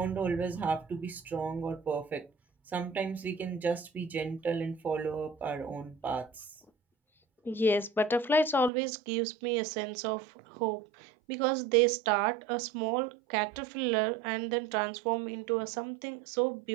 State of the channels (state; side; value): drops out; left; at 8.7 s